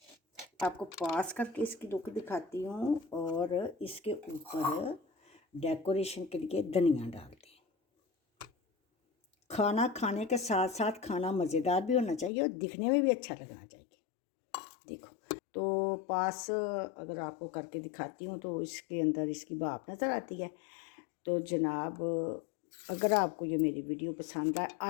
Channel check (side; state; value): right; drops out; at 12.3 s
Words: आपको पास करके इसकी लुक दिखाती हूँ और इसके ऊपर डेकोरेशन के लिए धनिया डालते हैं। खाना खाने के साथ साथ खाना मज़ेदार भी होना चाहिए और दिखने में भी अच्छा लगना चाहिए। देखो तो पास अगर आपको करके दिखाती हूँ तो इसके अंदर इसकी भाप नज़र आती है। तो जनाब अगर आपको ये मेरी वीडियो पसंद आए,